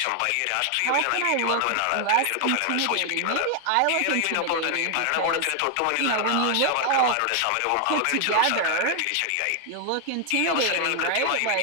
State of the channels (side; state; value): both; different; correlation 0.00